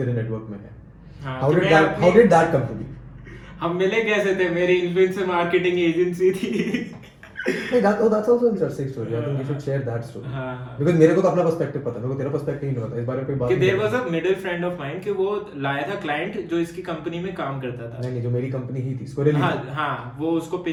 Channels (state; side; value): identical; both; correlation 1.00